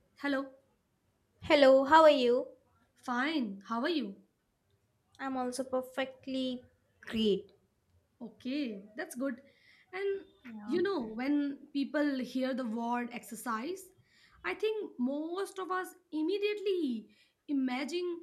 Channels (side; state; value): both; identical; correlation 1.00